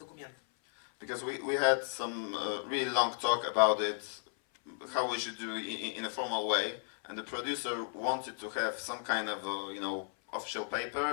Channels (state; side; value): silent; right; 55 dB below the other